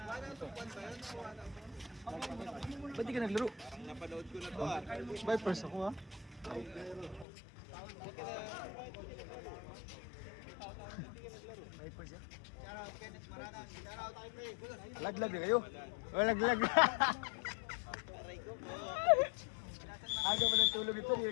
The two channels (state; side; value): drops out; right; at 7.2 s